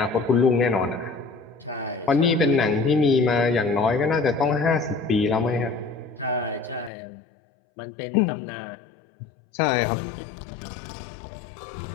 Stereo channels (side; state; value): right; drops out; at 6.9 s